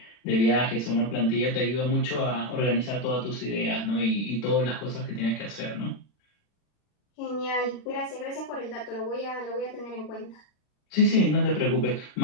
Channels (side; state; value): right; late; 40 ms